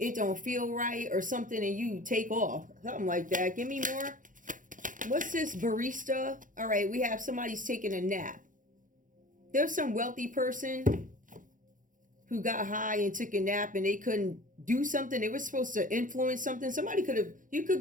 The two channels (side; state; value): left; late; 0.38 ms